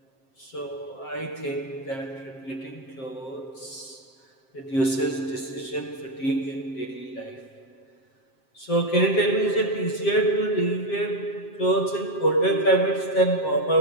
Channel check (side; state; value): right; late; 7.5 ms